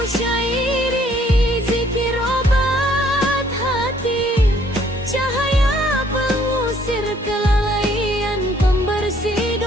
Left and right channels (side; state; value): both; normal; correlation 0.63